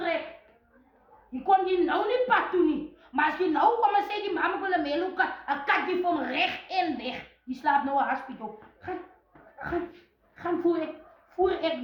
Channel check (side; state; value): both; identical; correlation 1.00